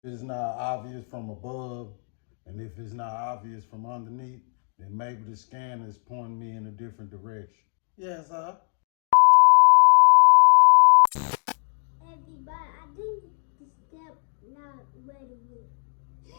If it's not obvious from above, and if it's not obvious from underneath, then maybe the scanner is pointing me in a different direction. Yes, sir. Everybody, I think the step not ready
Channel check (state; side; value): silent; right; 56 dB below the other